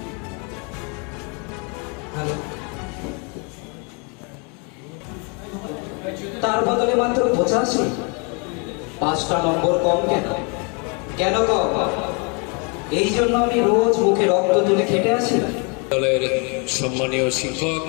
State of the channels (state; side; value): quieter; right; 33.9 dB